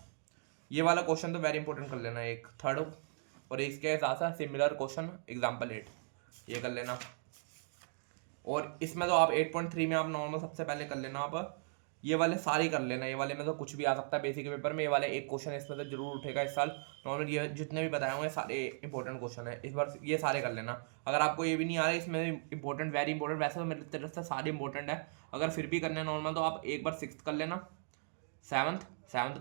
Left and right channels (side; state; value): left; silent; digital silence